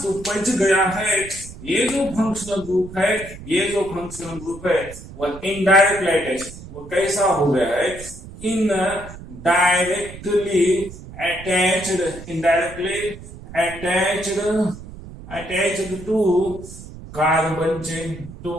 तो बच गया है ये जो फंक्शनल ग्रुप है, ये जो फंक्शनल ग्रुप है वो इनडायरेक्टली अटैच। वो कैसा हो गया है, indirectly attached to carbon chain, to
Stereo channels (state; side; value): noise; right; rumble, 15 dB below the sound